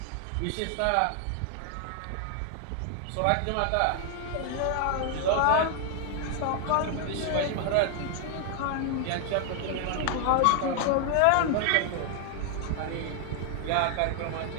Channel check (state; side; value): different; both; correlation 0.00